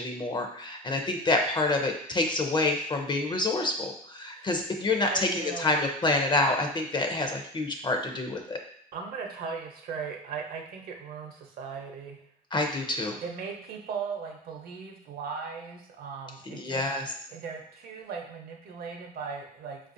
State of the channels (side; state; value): both; normal; correlation 0.27